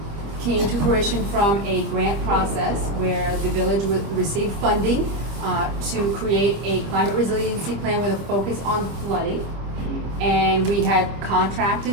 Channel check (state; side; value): late; left; 25 ms